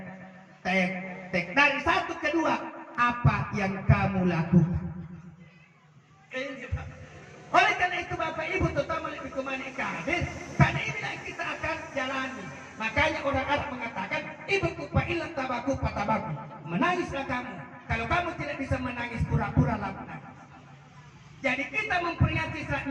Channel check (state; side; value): identical; both; correlation 1.00